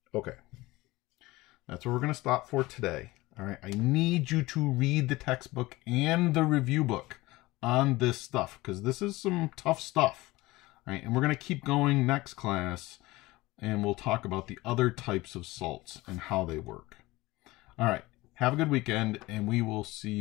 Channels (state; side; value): quieter; right; 20.0 dB